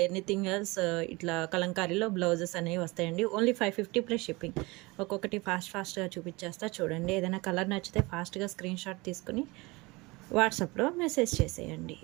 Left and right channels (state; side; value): quieter; left; 23.9 dB